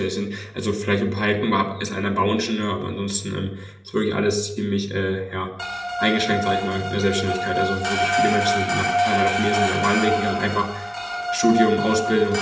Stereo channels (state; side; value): identical; both; correlation 1.00